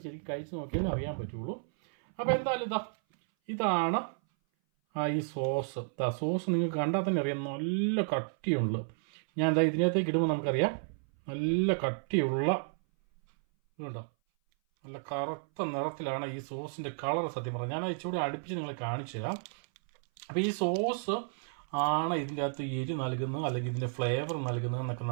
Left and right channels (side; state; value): left; silent; 56 dB below the other